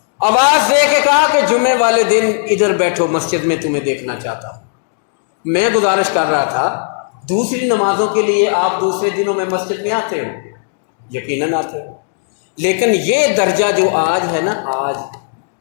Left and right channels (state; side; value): silent; right; digital silence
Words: آواز دے کے کہا کہ جمعے والے دن ادھر بیٹھو، مسجد میں تمہیں دیکھنا چاہتا ہوں۔ میں گزارش کر رہا تھا دوسری نمازوں کے لیے آپ دوسرے دنوں میں مسجد میں آتے ہو، یقیناً آتے ہو، لیکن یہ درجہ جو آج ہے نا، آج